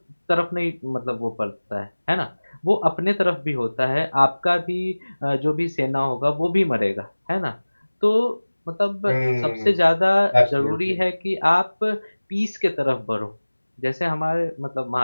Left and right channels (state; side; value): inverted; both; correlation -1.00